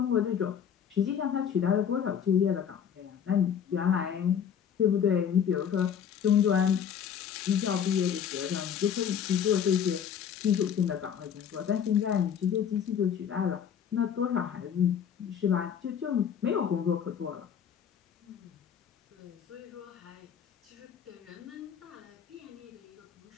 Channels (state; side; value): quieter; right; 8.3 dB